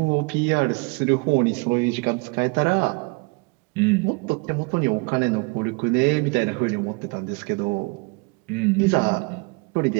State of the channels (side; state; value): left; quieter; 30.1 dB